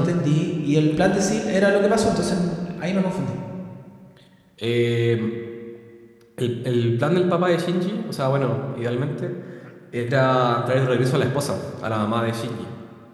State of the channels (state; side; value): identical; both; correlation 1.00